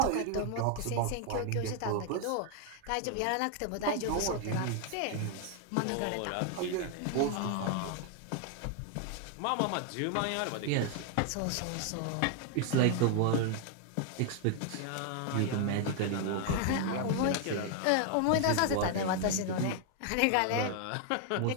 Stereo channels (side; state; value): both; different; correlation 0.00